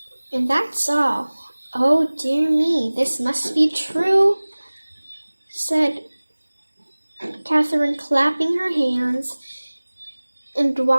And that's all." "Oh dear me, this must be true," said Catherine, clapping her hands and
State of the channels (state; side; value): inverted; both; correlation -1.00